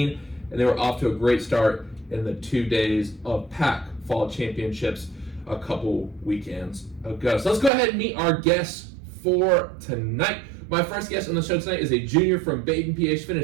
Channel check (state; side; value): drops out; left; at 7.7 s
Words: and they were off to a great start in the 2 days of PAC fall championships a couple weekends ago. So let's go ahead and meet our guests for tonight. My first guest on the show tonight is a junior from Baden, PA. She